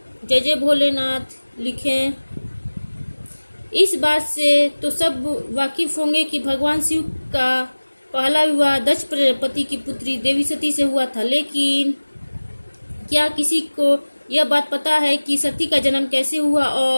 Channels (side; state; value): both; inverted; correlation -1.00